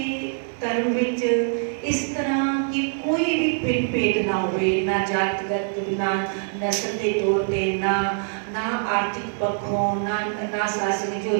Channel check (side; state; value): left; silent; 60 dB below the other